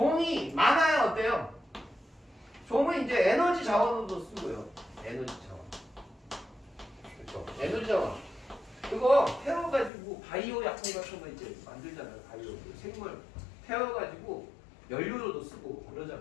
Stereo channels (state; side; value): drops out; right; at 9.9 s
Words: 많아야 어때요? 종은 이제 에너지 자원으로도 쓰고요. 에너지 자원. 그렇죠. 에너지 자원. 그거 태워가지고 바이오 약품 같은 거 이제 만들잖아요. 바이오. 생물 태워가지고 연료로도 쓰고